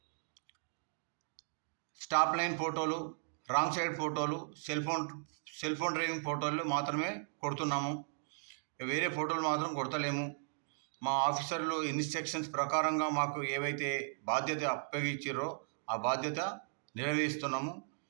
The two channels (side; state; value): left; silent; digital silence